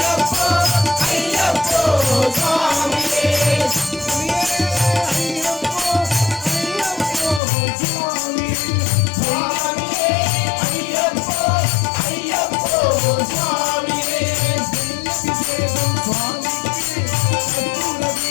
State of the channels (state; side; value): drops out; right; at 7.4 s